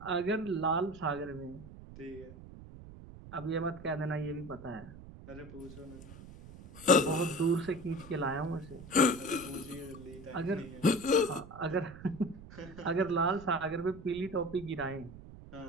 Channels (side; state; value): right; noise; rumble, 16 dB below the sound